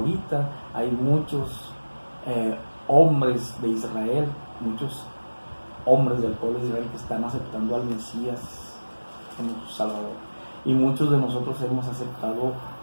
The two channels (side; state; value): both; inverted; correlation -1.00